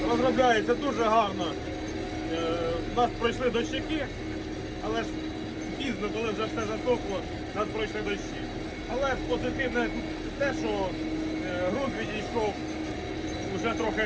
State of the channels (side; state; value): both; identical; correlation 1.00